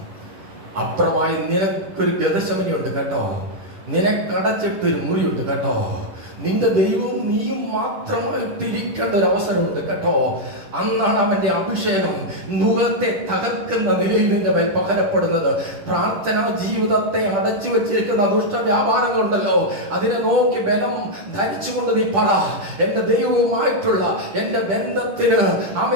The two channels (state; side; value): late; left; 10 ms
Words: അപ്പുറമായി നിനക്കൊരു ഗതശമനിയുണ്ട് കേട്ടോ, നിനക്കടച്ചിട്ടൊരു മുറിയുണ്ട് കേട്ടോ, നിന്റെ ദൈവവും നീയും മാത്രമായിട്ടിരിക്കേണ്ട ഒരു അവസരമുണ്ട് കേട്ടോ. അന്നാണ് അവന്റെ അഭിഷേകം മുഖത്തെ തകർക്കുന്ന നിലയിൽ നിന്റെ മേൽ പകരപ്പെടുന്നത്. പ്രാർത്ഥനാ ജീവിതത്തെ അടച്ചു വെച്ചിരിക്കുന്ന ദുഷ്ട വ്യാപാരങ്ങളുണ്ടല്ലോ, അതിനെ നോക്കി ബലം ധരിച്ചുകൊണ്ട് നീ പറ, എന്റെ ദൈവവുമായിട്ടുള്ള എന്റെ ബന്ധത്തിന്